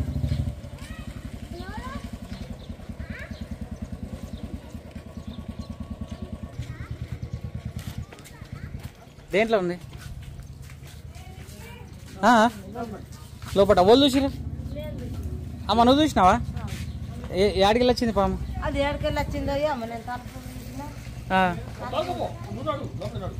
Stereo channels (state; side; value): identical; both; correlation 1.00